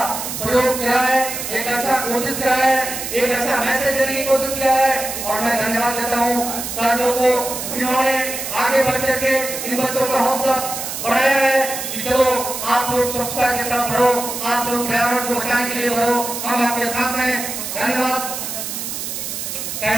प्रयोग किया है, एक अच्छा कोशिश किया है, एक अच्छा मैसेज देने की कोशिश किया है और मैं धन्यवाद देता हूँ सर लोगों को, इन्होंने आगे बढ़ करके इन बच्चों का हौसला बढ़ाया है कि चलो आप लोग स्वच्छता की तरफ बढ़ो, आप लोग पर्यावरण को बचाने के लिए बढ़ो, हम आपके साथ हैं। धन्यवाद,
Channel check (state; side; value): noise; right; hiss, 5 dB below the sound